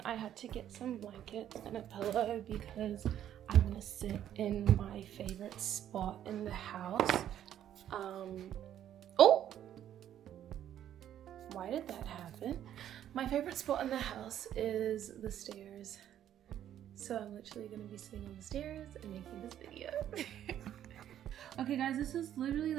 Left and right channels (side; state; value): left; quieter; 10.9 dB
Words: I had to get some blankets and a pillow because I want to sit in my favorite spot in the house. Oh! Why did that happen? My favorite spot in the house is the stairs. So I'm literally going to be sitting on the stairs and making this video. Okay guys, this is literally